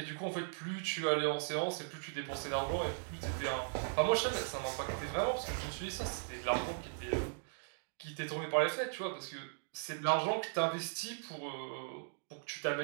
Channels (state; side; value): silent; left; digital silence